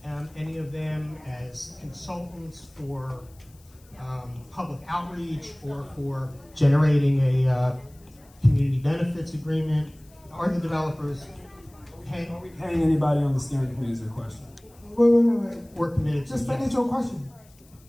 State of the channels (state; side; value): noise; left; hiss, 29 dB below the sound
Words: any of them as consultants for public outreach or for generating a community benefits agreement? Are the developers paying? Are we paying anybody on the steering committee is the question? Wait. We're committed to. Just finish your question.